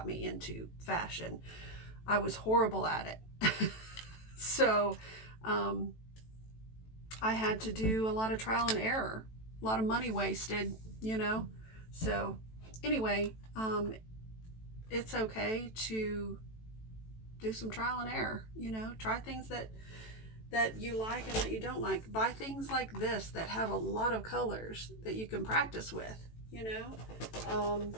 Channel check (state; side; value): late; right; 18 ms